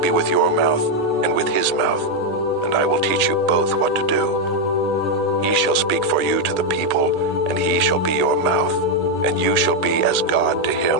with your mouth and with his mouth, and I will teach you both what to do. He shall speak for you to the people, and he shall be your mouth, and you shall be as God to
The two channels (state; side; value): normal; both; correlation 0.02